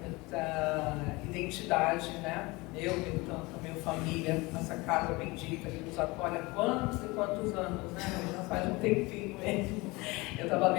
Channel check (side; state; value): right; quieter; 23.6 dB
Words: identidade, né? Eu tenho tanto, a minha família, essa casa bendita que nos acolhe há quantos e quantos anos, né? Já faz um tempinho mesmo. Eu estava